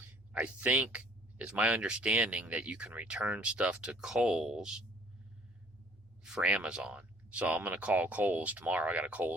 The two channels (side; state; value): both; normal; correlation 0.58